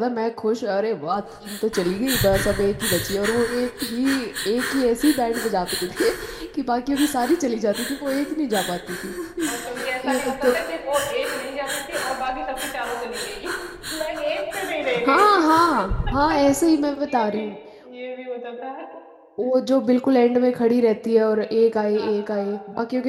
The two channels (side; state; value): both; identical; correlation 1.00